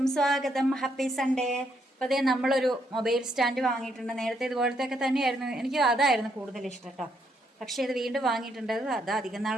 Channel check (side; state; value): both; normal; correlation 0.74